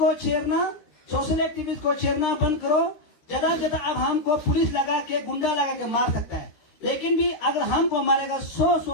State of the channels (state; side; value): late; right; 13 ms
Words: छेड़ना, सोशल एक्टिविस्ट को छेड़ना बंद करो। ज्यादा अब हमको पुलिस लगा के, गुंडा लगा के मार सकता है, लेकिन भी अगर हमको मारेगा